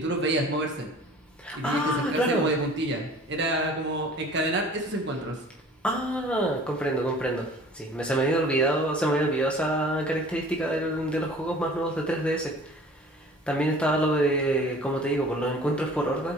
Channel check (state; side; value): normal; both; correlation 0.47